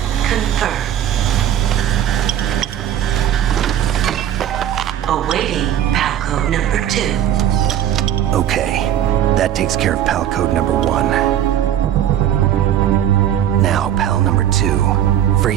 confirmed. Awaiting PAL code number 2. Okay, that takes care of PAL code number 1. Now, PAL number 2.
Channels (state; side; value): quieter; left; 10.7 dB